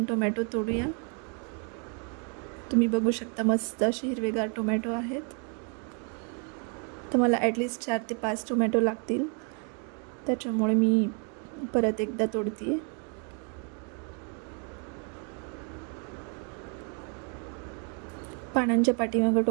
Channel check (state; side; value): quieter; left; 39.6 dB